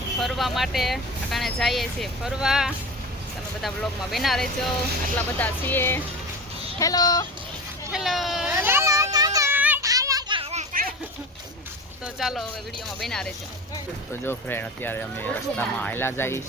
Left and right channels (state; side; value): normal; both; correlation 0.30